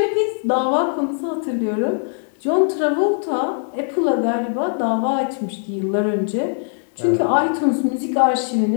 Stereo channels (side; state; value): right; silent; 65 dB below the other